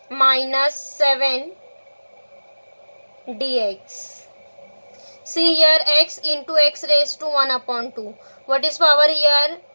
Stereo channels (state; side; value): inverted; both; correlation -1.00